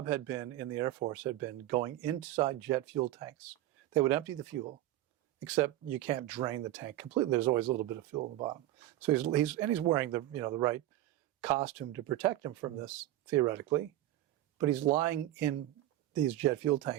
had been in the Air Force, had been going inside jet fuel tanks. They would empty the fuel, except you can't drain the tank completely. There's always a little bit of fuel in the bottom. So he's wearing the right costume to protect him from this, theoretically. But he's lying in these jet fuel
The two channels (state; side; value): quieter; left; 14.5 dB